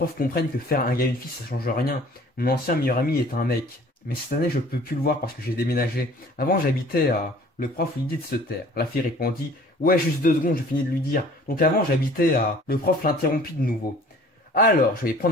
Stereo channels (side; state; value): both; normal; correlation 0.51